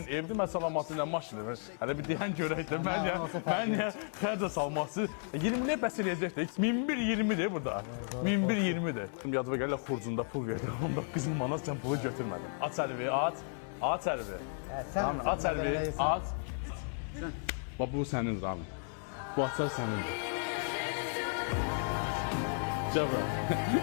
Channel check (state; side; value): silent; right; 55 dB below the other